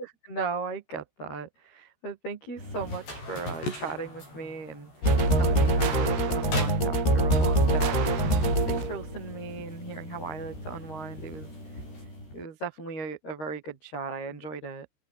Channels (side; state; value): right; late; 13 ms